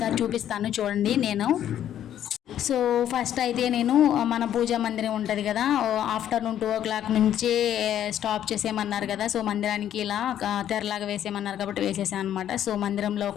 చూపిస్తాను చూడండి. సో ఫస్ట్ అయితే నేను మన పూజా మందిరం ఉంటుంది కదా, ఆఫ్టర్నూన్ 2 o'clock నుంచే స్టాప్ చేసేయమన్నారు కదా. సో మందిరానికి ఇలా తెరలాగా వేసేయమన్నారు కాబట్టి వేసేసాను అనమాట. సో మందిరంలో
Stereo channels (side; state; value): right; quieter; 10.8 dB